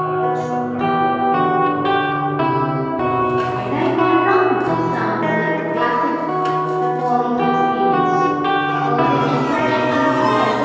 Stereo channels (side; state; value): both; identical; correlation 1.00